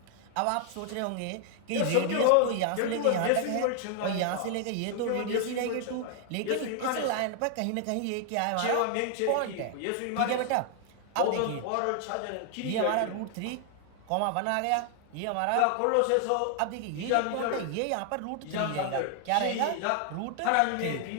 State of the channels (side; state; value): both; different; correlation 0.00